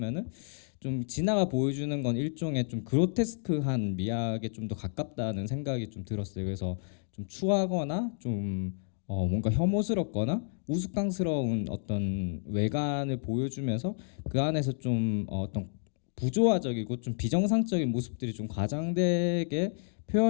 좀 진아가 보여주는 건 일종의 좀 그로테스크한 미학에 좀 더 가깝다는 생각이 좀 들었어요. 그래서 좀 추하거나 좀 뭔가 혐오스럽거나 우스꽝스러운 어떤 외관을 보여주면서 그 안에서 좀 어떤 부조화적이고 좀 비정상적인 모습들이 좀 과장되게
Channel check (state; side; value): silent; right; digital silence